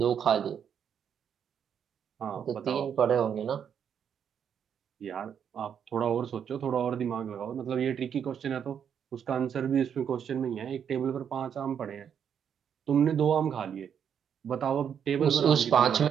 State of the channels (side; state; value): left; quieter; 8.1 dB